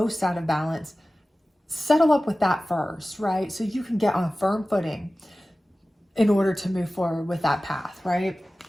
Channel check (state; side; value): normal; both; correlation 0.96